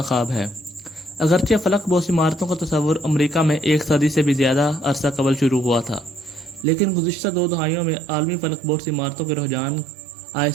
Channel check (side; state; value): left; drops out; at 6.7 s